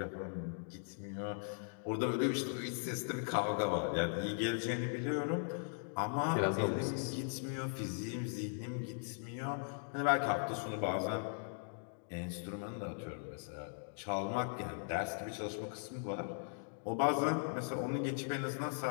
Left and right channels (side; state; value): right; silent; digital silence